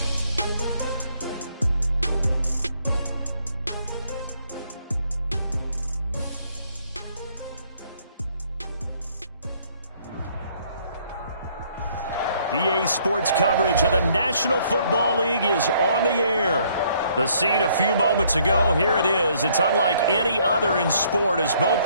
EA Sports coverage of the National Football League is on the air. The scene a few moments ago, here it is. It's unlike any other in sport as both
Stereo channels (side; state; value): both; inverted; correlation -0.65